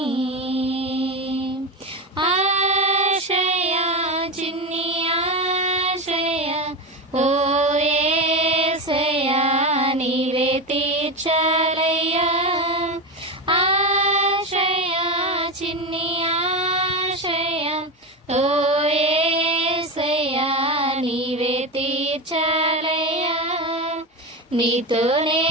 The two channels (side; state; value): both; normal; correlation 0.18